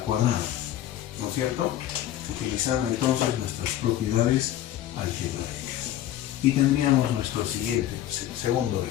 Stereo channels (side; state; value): right; quieter; 12.6 dB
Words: cuadrado, ¿no es cierto? Utilizando entonces nuestras propiedades algebraicas y tendríamos nuestro siguiente, segundo